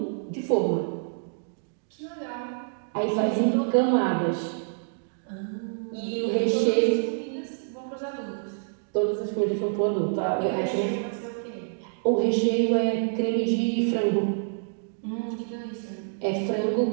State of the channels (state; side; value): silent; left; digital silence